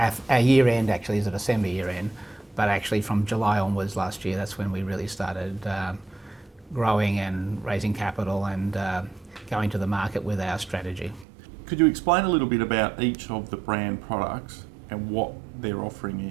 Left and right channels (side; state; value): left; drops out; at 11.2 s